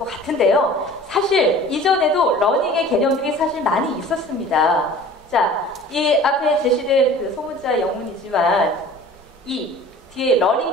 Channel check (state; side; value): normal; both; correlation 0.44